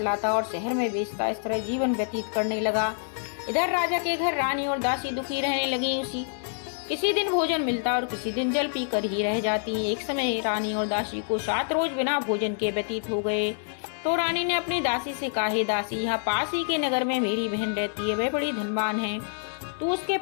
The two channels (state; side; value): silent; right; digital silence